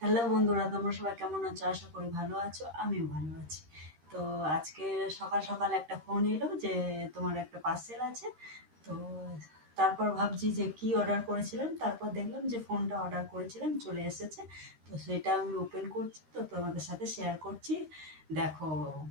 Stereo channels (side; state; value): left; late; 13 ms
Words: Hello বন্ধুরা, তোমরা সবাই কেমন আছো? আশা করি ভালো আছো, আমিও ভালো আছি। তো আজকে সকাল সকাল একটা ফোন এলো যে তোমার একটা পার্সেল আছে। তো তারপর ভাবছি যে কি অর্ডার করেছিলাম, তারপর দেখলাম যে ফোনটা অর্ডার করেছিলাম চলে এসেছে। তো সেটা আমি ওপেন করছি, তো তোমাদের সাথে শেয়ার করছি। দেখো